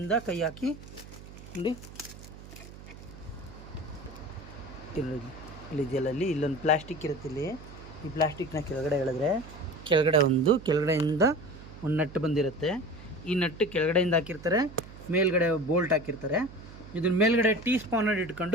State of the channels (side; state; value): right; noise; hum, 16 dB below the sound